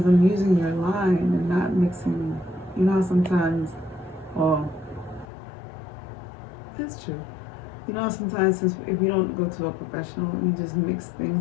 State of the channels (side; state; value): right; drops out; at 5.2 s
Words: I'm using your line and not mixing. You know how sometimes, well, that's true. You know how sometimes if you don't go to a professional, you just mix